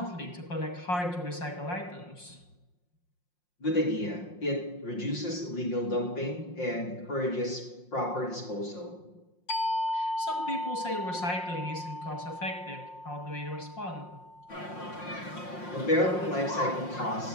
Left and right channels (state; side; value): late; right; 5.6 ms